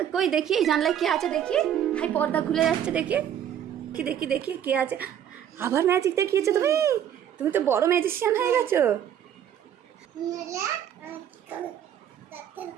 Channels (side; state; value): left; quieter; 9.8 dB